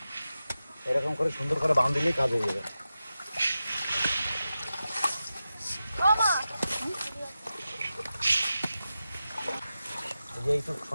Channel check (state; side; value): inverted; both; correlation -0.92